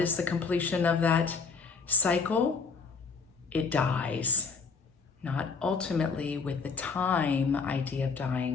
is the completion of that cycle? It dies. Not ultimately with the time idea of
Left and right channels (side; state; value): right; quieter; 5.0 dB